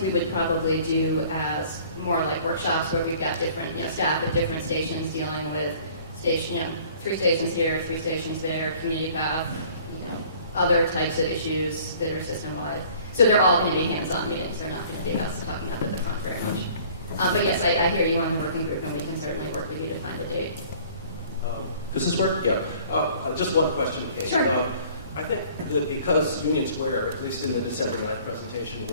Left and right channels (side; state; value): both; inverted; correlation -0.53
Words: would probably do as more like workshops, where we've got different, staff at different stations dealing with 3 stations here, 3 stations there, community path, other types of issues that are system-wide. So they're all going to be hands-on meetings. They're not going to be us talking up at the front very much. But yes, I hear you on the working group, and we can certainly work with you to find a date. Does this work? Yeah. Just one question, Kate. Sure. I think that because Union Square, at least in the December 9th presentation,